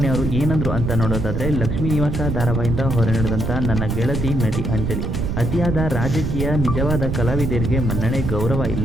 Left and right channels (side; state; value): right; noise; rumble, 1 dB below the sound